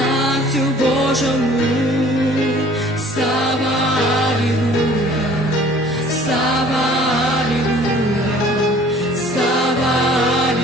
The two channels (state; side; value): normal; both; correlation 0.52